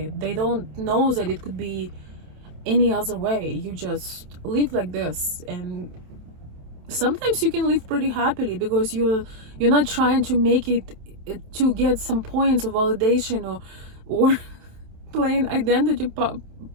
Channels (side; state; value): left; late; 27 ms